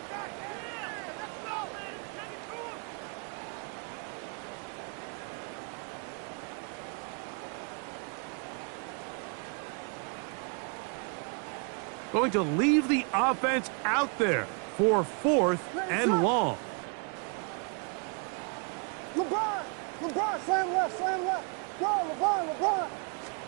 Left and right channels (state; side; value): quieter; left; 37.4 dB